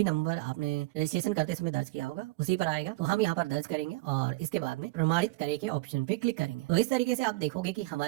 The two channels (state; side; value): quieter; left; 21.5 dB